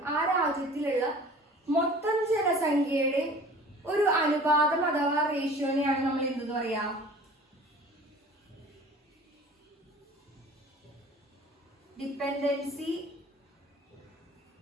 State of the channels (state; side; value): normal; both; correlation 0.45